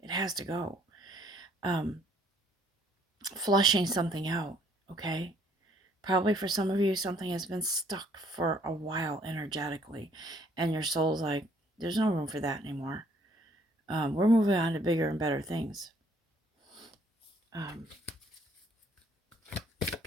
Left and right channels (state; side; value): normal; both; correlation 0.63